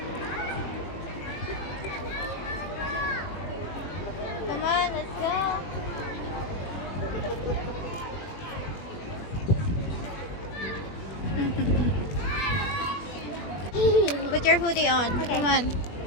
Come on, let's go. Put your hoodie on. Okay. Come on.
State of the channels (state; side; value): late; right; 21 ms